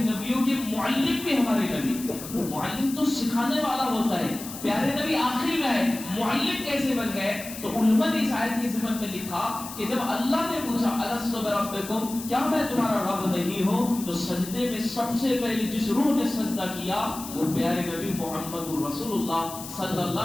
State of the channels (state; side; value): noise; left; hiss, 12 dB below the sound